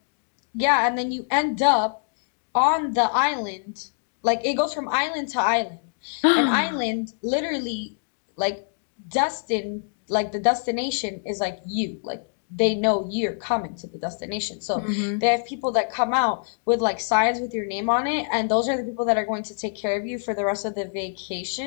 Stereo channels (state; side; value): silent; right; digital silence